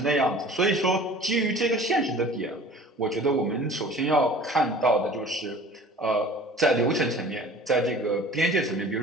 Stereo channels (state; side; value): normal; both; correlation 0.45